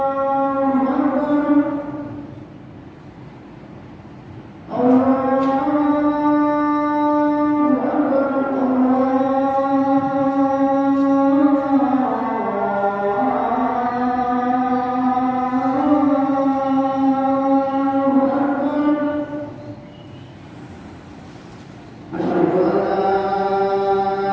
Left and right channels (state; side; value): identical; both; correlation 1.00